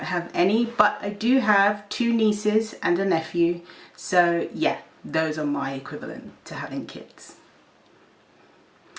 have any, but I do have 2 nieces and a nephew. So yeah, those are my equivalent to having kids.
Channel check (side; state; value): both; identical; correlation 1.00